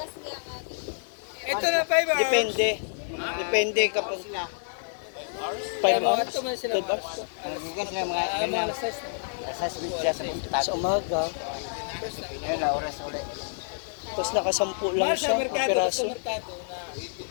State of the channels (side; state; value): right; silent; digital silence